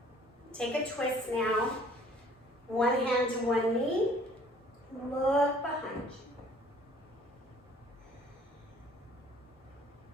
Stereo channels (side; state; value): both; normal; correlation 0.56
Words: Take a twist now. One hand to one knee. Look behind you.